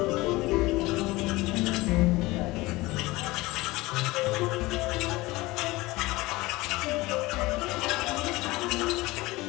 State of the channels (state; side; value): quieter; right; 20.7 dB